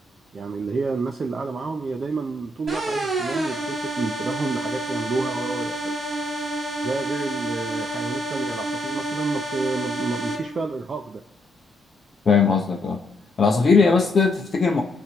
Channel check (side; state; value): both; normal; correlation 0.75